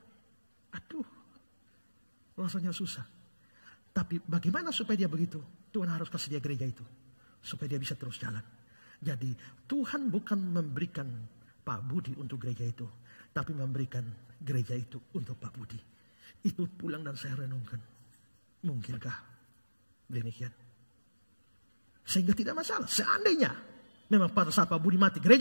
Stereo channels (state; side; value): inverted; both; correlation -1.00